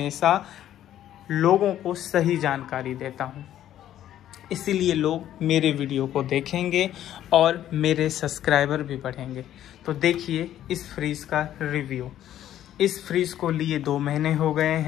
लोगों को सही जानकारी देता हूं। इसीलिए लोग मेरे वीडियो को देखेंगे और मेरे सब्सक्राइबर भी बढ़ेंगे। तो देखिए इस फ्रीज का रिव्यू। इस फ्रीज को लिए 2 महीने हो गए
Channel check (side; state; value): right; quieter; 11.8 dB